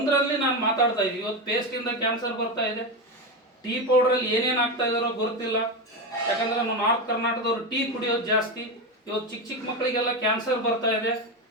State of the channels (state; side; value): normal; both; correlation 0.15